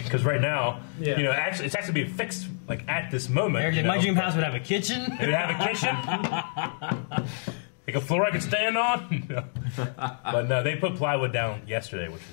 right now, Yeah. actually, it's actually being fixed like at this moment. Eric, you my know. dream house would have a kitchen. It would have a kitchen, like a floor I could stand on. But no, they put plywood down yesterday, which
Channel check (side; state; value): right; silent; digital silence